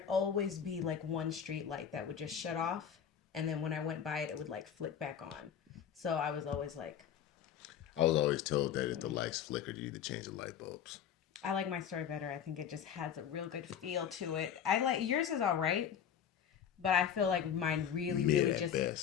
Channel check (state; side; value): quieter; right; 8.7 dB